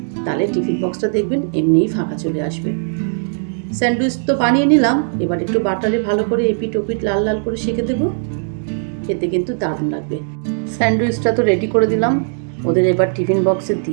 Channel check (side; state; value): left; silent; digital silence